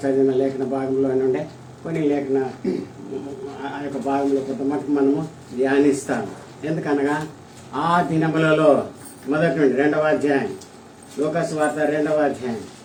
చదివిన లేఖన భాగంలో నుండే కొన్ని లేఖన ఆ యొక్క భాగంలో కొంత మటుకు మనము ధ్యానిస్తాము. ఎందుకనగా ఆ దినములలో మొదటి నుండి 2వ అధ్యాయం లూకాసు వార్త 2వ అధ్యాయం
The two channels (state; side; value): identical; both; correlation 1.00